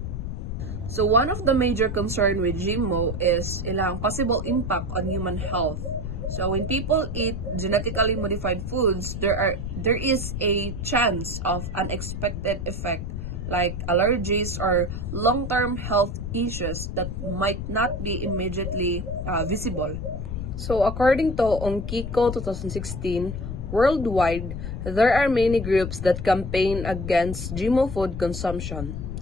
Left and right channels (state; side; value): noise; left; rumble, 5 dB below the sound